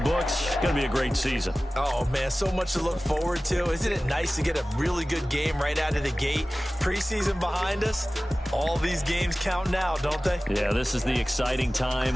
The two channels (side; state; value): both; normal; correlation 0.97